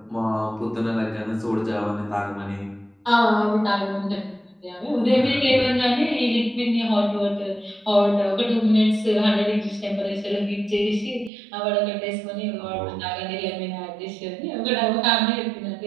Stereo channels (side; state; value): left; drops out; at 11.3 s